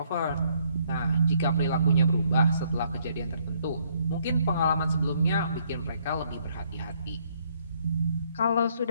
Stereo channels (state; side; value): inverted; both; correlation -0.68